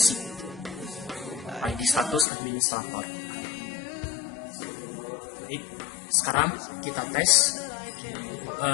ID status administrator. Baik, sekarang kita tes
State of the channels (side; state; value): right; drops out; at 2.2 s